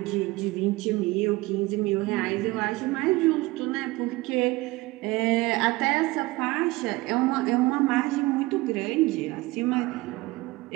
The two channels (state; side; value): quieter; left; 20.8 dB